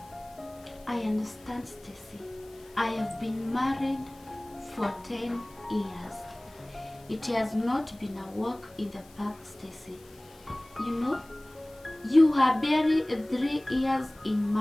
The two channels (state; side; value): noise; left; hiss, 26 dB below the sound